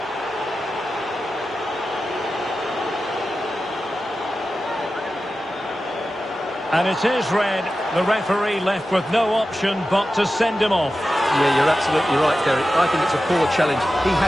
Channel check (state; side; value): normal; both; correlation 0.93